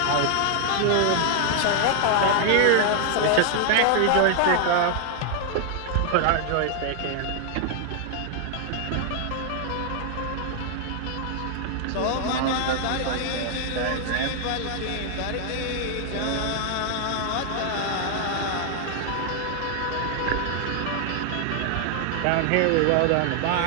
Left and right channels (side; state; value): both; different; correlation 0.00